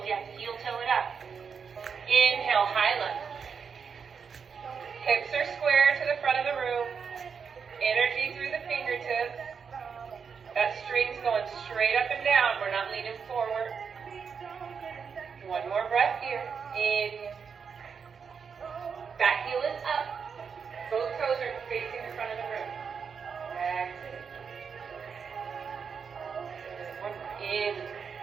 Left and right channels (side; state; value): left; quieter; 6.2 dB